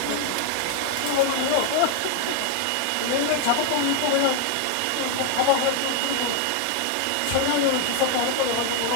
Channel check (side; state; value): both; different; correlation 0.00